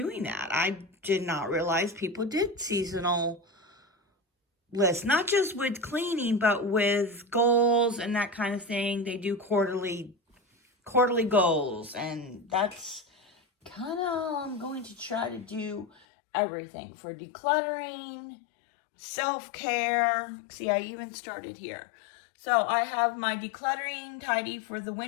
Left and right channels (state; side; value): drops out; right; at 16.0 s